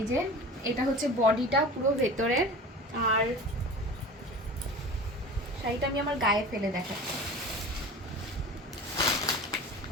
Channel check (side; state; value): both; normal; correlation 0.36